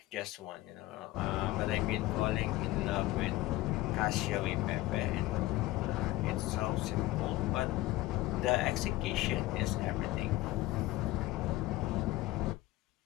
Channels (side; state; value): right; quieter; 17.7 dB